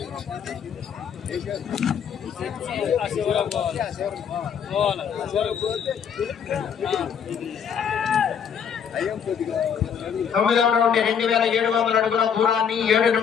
తొమ్మిదవ రౌండ్ 2700 అడుగుల దూరాన్ని 7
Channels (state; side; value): quieter; right; 7.5 dB